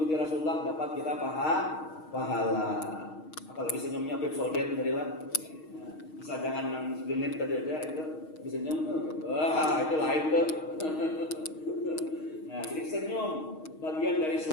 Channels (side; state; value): right; late; 6.4 ms